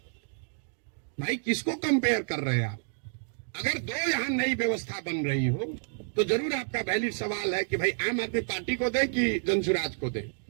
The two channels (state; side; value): silent; left; digital silence